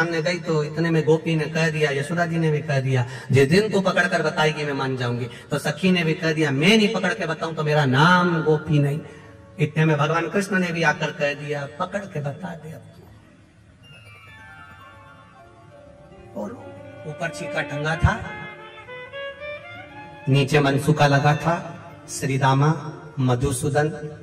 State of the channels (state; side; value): identical; both; correlation 1.00